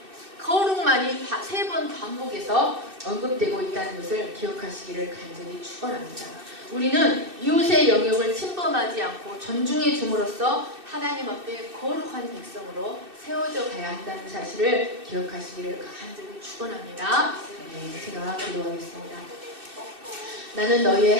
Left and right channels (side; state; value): left; late; 2.6 ms